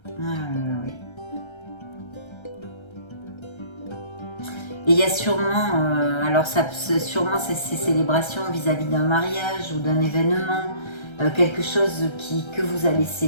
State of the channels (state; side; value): late; right; 1.3 ms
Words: Oui. Et il y a sûrement, alors sûrement ces célébrations vis-à-vis d'un mariage ou d'un événement, quelque chose que vous allez